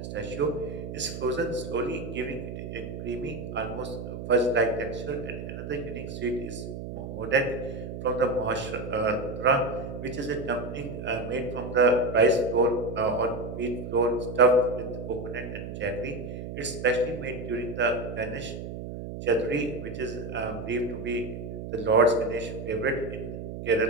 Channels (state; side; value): noise; right; hum, 8 dB below the sound